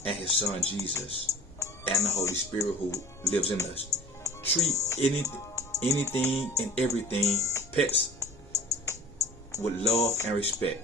and His Son Jesus, and the Holy Spirit who lives in us. Treat anything and everything, pets, with love and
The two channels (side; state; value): left; noise; rumble, 26 dB below the sound